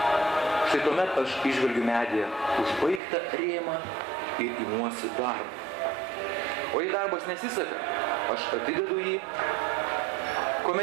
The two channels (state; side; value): drops out; left; at 3.0 s